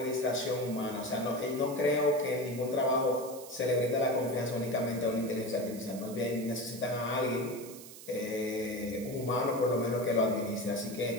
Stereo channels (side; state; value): right; noise; hiss, 15 dB below the sound